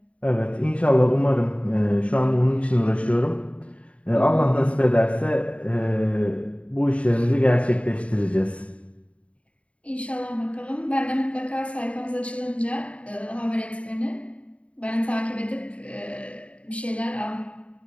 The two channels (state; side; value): late; right; 0.063 ms